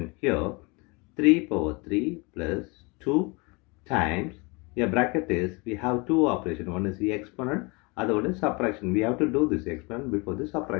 Here 3 power 3 plus 2 times, here bracket is, we have two operations. One is the exponent, other one is subtraction. We have to do this exponent before this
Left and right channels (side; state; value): right; quieter; 28.2 dB